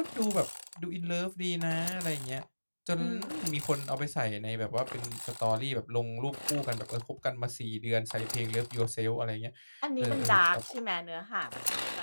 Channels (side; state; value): both; inverted; correlation -1.00